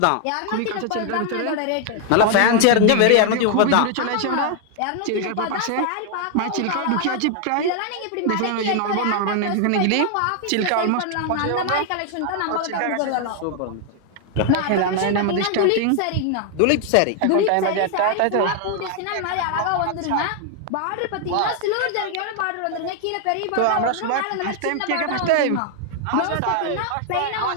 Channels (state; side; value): different; both; correlation 0.00